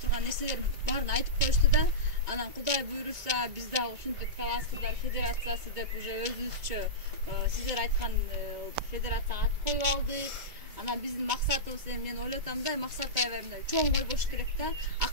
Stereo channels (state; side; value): late; left; 2.2 ms